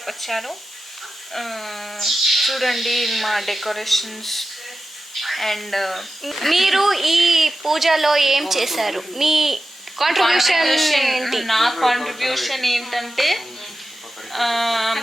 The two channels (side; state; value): both; normal; correlation 0.92